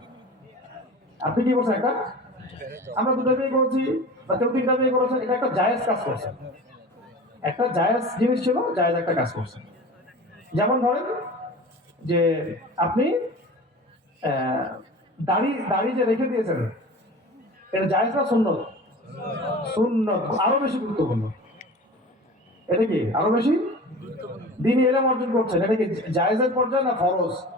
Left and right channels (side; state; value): both; normal; correlation 0.37